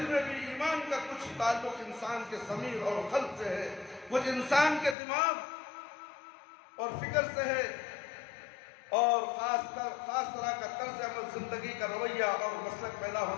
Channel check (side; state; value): right; drops out; at 5.0 s